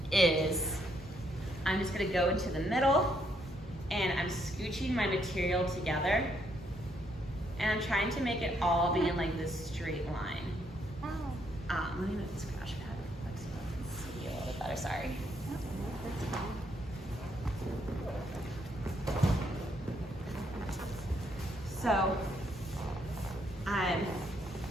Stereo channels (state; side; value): normal; both; correlation 0.73